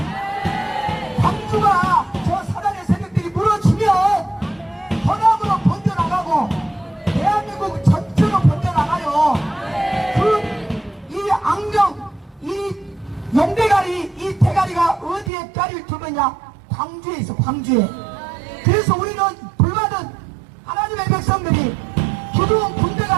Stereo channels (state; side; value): drops out; left; at 15.3 s